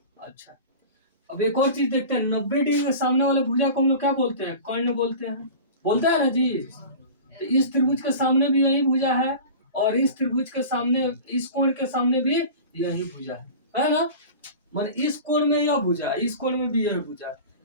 अच्छा, अब एक और चीज देखते हैं, 90 डिग्री के सामने वाले भुजा को हम लोग क्या बोलते हैं, कर्ण बोलते हैं, बोलते हैं ना जी। तो इस त्रिभुज के सामने भी यही भुजा है, और इस त्रिभुज के सामने, इस कोण के सामने भी यही भुजा है ना। मान इस कोण में यह भुजा, इस कोण में भी यह भुजा,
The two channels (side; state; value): both; inverted; correlation -0.36